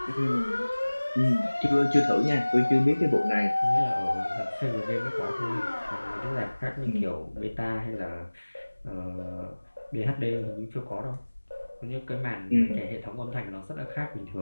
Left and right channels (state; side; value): inverted; both; correlation -1.00